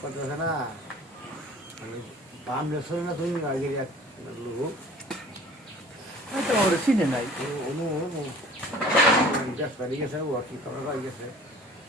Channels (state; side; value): normal; both; correlation 0.47